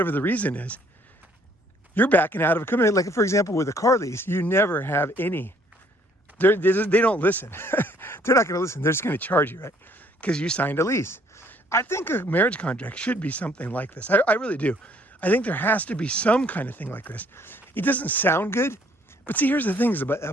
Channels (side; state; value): both; normal; correlation 0.62